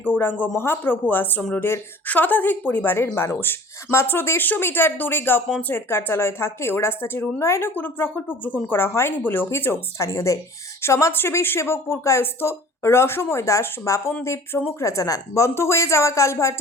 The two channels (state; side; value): normal; both; correlation 0.46